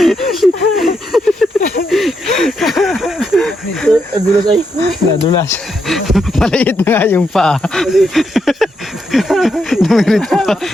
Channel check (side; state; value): both; normal; correlation 0.80